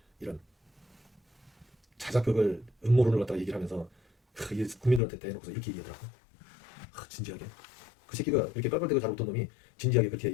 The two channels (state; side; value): drops out; right; at 5.0 s